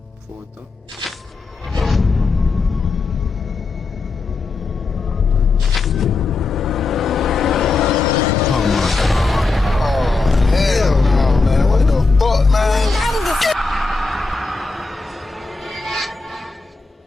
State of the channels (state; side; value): quieter; right; 3.9 dB